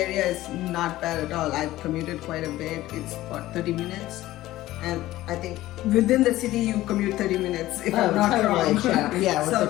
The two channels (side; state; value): right; quieter; 16.0 dB